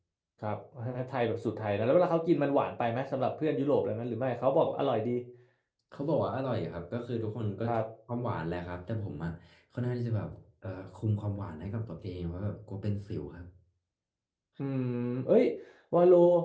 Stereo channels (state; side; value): identical; both; correlation 1.00